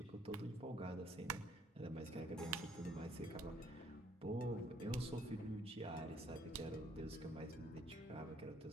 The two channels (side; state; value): both; normal; correlation 0.64